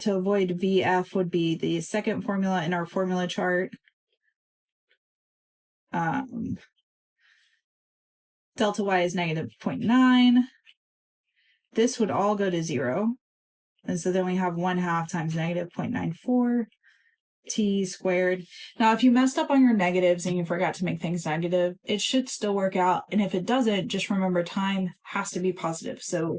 to avoid VF would be the second formula in our formula chart. Delta Y is negative 0.9. This would all go to 0. And so then we have 1/2 times negative 0.94 t squared. Now, if you messed up on your negatives and you forgot to make things negative, it should still work out. And if it doesn't, just remember time has to be positive.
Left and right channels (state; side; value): identical; both; correlation 1.00